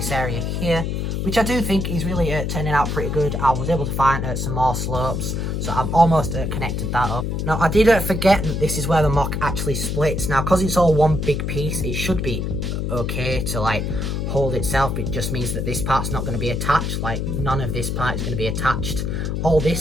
area here, which I do think is really turning out pretty good. I was able to find some more slopes, so I'm almost connected that up. Now I did forget that this is where the mock actually splits. Now because it's all one big piece, it should be okay to like hold itself. It just means that this part's not going to be attached. Like, none of this part is going to be attached. All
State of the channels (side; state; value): left; noise; hum, 1 dB below the sound